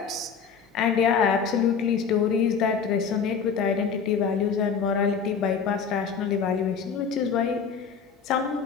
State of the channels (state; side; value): quieter; right; 6.3 dB